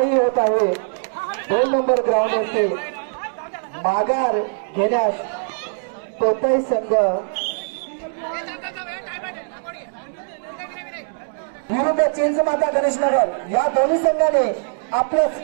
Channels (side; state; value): left; silent; digital silence